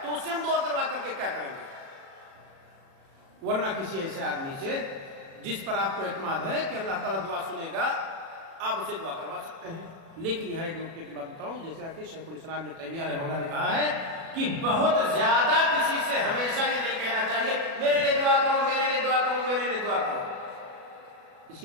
تو اس سے ہم دعا کروا کر کے کیا کریں گے؟ ورنہ کسی ایسے آدمی سے جس پر آپ کو اعتماد ہے کہ اللہ تعالیٰ دعا سنے گا، آپ اسے دعا کروا سکتے ہیں۔ لیکن یہاں ایک نقطے کی بات بتاؤں، جیسے کہ شیخ الاسلام ابن تیمیہ رحمہ اللہ نے کہا ہے کہ بہت زیادہ کسی سے ہمیشہ یہ نہیں کہنا چاہیے میرے لیے دعا کرو، میرے لیے دعا کرو، میرے لیے دعا کرو۔ اس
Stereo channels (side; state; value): left; late; 36 ms